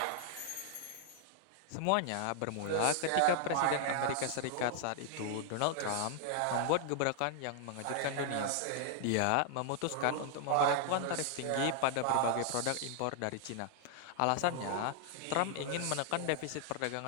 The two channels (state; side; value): different; both; correlation 0.00